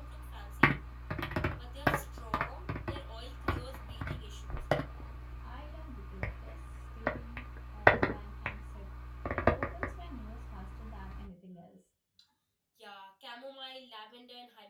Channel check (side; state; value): both; identical; correlation 1.00